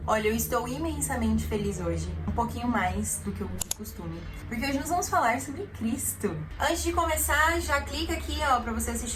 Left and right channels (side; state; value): both; identical; correlation 1.00